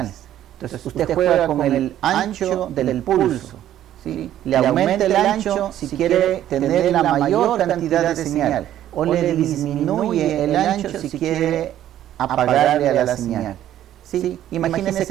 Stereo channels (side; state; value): left; quieter; 12.0 dB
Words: Entonces usted juega con el ancho del pulso, ¿sí? Le aumenta el ancho si quiere tener la mayor cantidad de señal, o le disminuye el ancho si quiere apagarle a la señal. ¿Sí? Imagínense